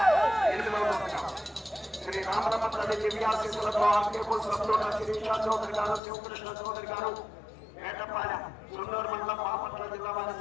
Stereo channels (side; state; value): right; drops out; at 6.0 s